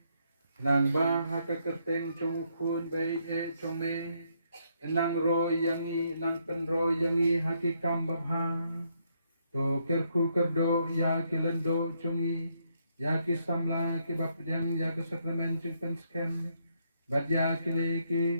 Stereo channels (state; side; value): inverted; both; correlation -0.75